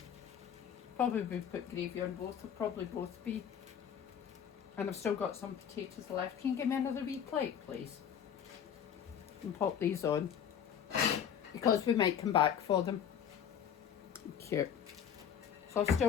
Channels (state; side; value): quieter; right; 8.5 dB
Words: Probably will put gravy on both, will probably both be. And I've still got some potatoes left. Can you give me another wee plate, please? And pop these on. Because we might come back for them. Cute. So I've